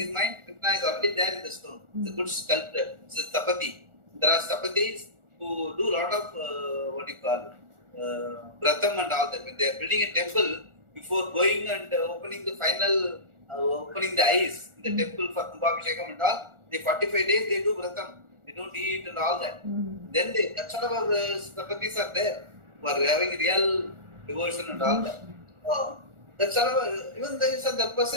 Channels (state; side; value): late; left; 1.4 ms